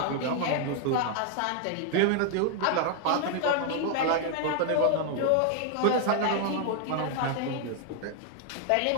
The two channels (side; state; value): both; different; correlation 0.00